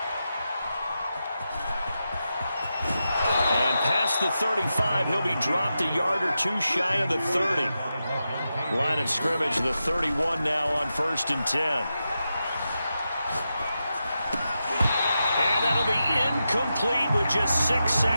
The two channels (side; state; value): both; inverted; correlation -0.89